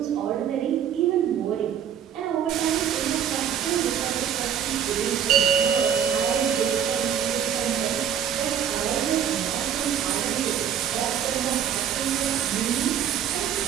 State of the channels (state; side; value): quieter; left; 8.9 dB